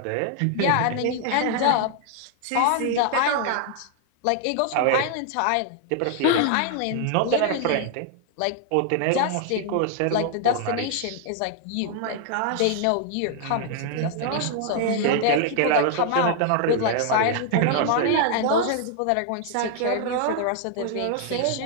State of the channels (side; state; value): both; different; correlation 0.00